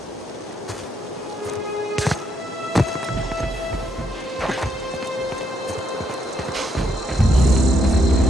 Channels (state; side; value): normal; both; correlation 0.75